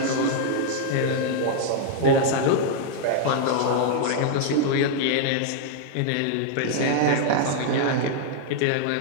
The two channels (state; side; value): different; both; correlation -0.01